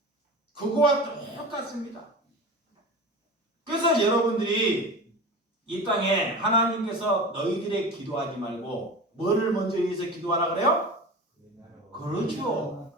그거와 똑같습니다. 그래서 여러분들이 이 땅에 하나님께서 너희들의 기도하지 말고 뭐를 먼저 위해서 기도하라 그래요? 그렇죠.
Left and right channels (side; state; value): both; normal; correlation 0.32